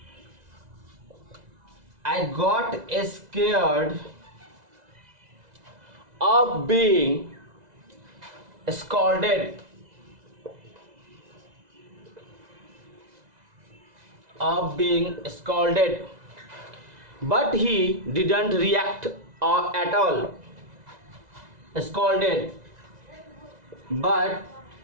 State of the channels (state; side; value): late; left; 2.0 ms